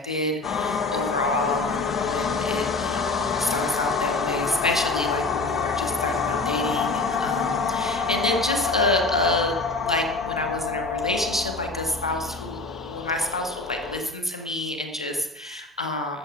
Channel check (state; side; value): quieter; right; 3.3 dB